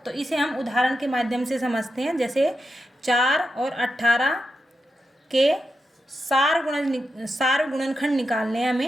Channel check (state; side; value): normal; both; correlation 0.87